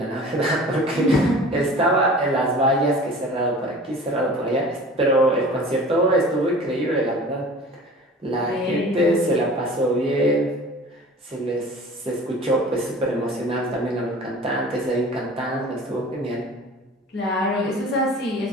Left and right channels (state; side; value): normal; both; correlation 0.42